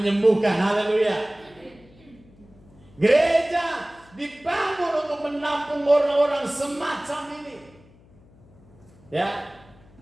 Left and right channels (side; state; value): left; noise; hum, 27 dB below the sound